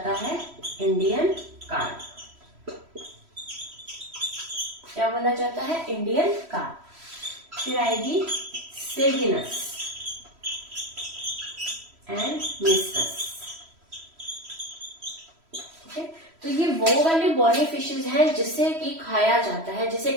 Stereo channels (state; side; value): late; left; 3.1 ms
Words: है इंडियन कार्प। क्या बोला जाता है, इंडियन कार्प। फिर आएगी सेगिनस एंड मिस्टस, ठीक है। तो ये वो वाली बॉनी फिशेज हैं जिसे कि खाया जाता है, जिसे